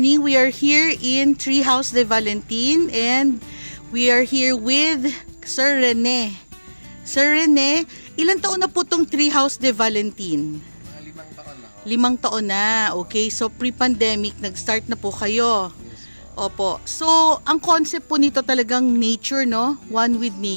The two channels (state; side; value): inverted; both; correlation -1.00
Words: We are here in Treehouse de Valentin and we are here with Sir Rene. Sir Rene, ilang taon na po itong Treehouse de Valentin? Mga 5 taon na ho. 5 taon na. Okay, so pre-pandemic, nag-start na po kayo. Yes po. Opo. So, ang concept po nito talagang nature, no? One with